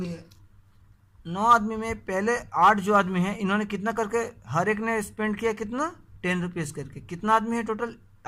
है। 9 आदमी में पहले 8 जो आदमी है, इन्होंने कितना करके हर एक ने स्पेंड किया? कितना? 10 रुपीज़ करके। कितना आदमी है टोटल?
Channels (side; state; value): both; identical; correlation 1.00